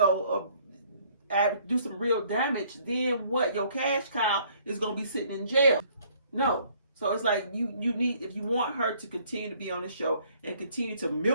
do some real damage, then what? Your cash cow is gonna be sitting in jail. No. So it's like you need, if you want her to continue to be on the show and continue to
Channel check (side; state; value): both; inverted; correlation -0.61